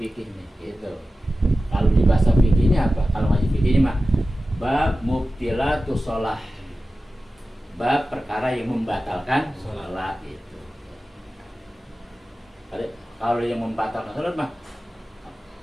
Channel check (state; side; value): normal; both; correlation 0.94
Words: nih gitu. Kalau di bahasa fikihnya apa? Kalau ngaji fikihnya mah bab mubtilatu sholah, bab perkara yang membatalkan sholat itu. Kalau yang membatalkan sholat mah